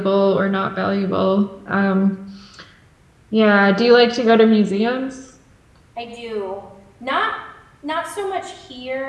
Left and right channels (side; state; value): both; identical; correlation 1.00